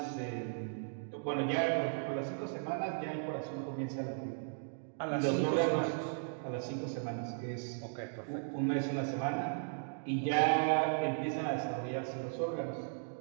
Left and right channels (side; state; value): left; silent; digital silence